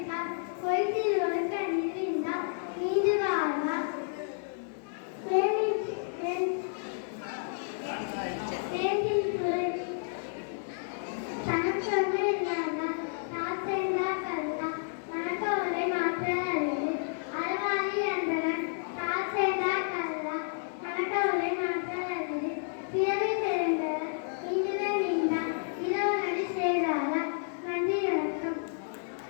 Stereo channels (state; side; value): silent; right; 57 dB below the other